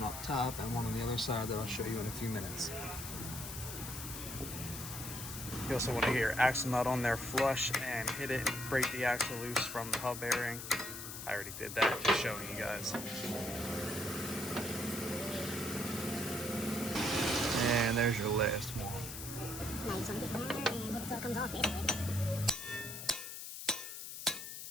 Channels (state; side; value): noise; left; hiss, 8 dB below the sound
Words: up top, and one on the other side that I'll show you in a few minutes. You also want to get your axle nut on there flush and hit it and break the axle loose from the hub bearing. I already did that, just showing you guys. And there's your last one. Now you just want to get it there and hit it till it comes off, basically.